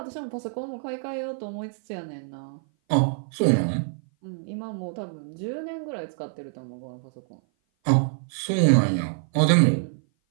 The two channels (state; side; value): silent; left; 56 dB below the other